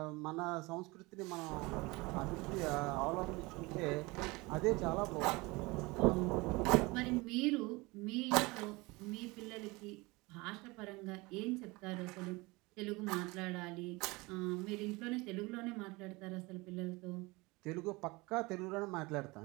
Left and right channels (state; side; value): quieter; left; 23.8 dB